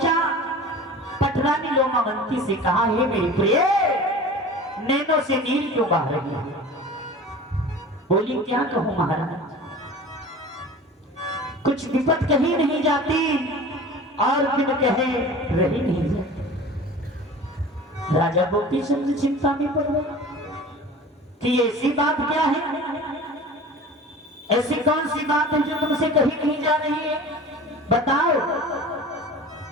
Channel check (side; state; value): both; normal; correlation 0.39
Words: पटरानी लोमावंती से कहा, हे मेरी प्रिय, नैनों से नीर क्यों बहा रही है? बोली, क्या कहूं महाराज, कुछ विपत कही नहीं जाती और बिन कहे रही नहीं जाती। राजा गोपीचंद्र चिंता में पड़ गए कि ऐसी बात क्या है, ऐसी कौन सी बात है जो तुमसे कही नहीं जा रही है, बताओ।